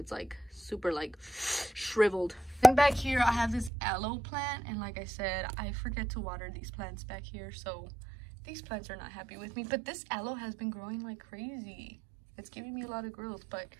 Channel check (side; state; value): left; drops out; at 3.7 s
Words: like super like shriveled. And back here, I have this aloe plant. And like I said, I forget to water these plants back here. So these plants are not happy with me. But this aloe has been growing like crazy. It's giving me a lot of growth, but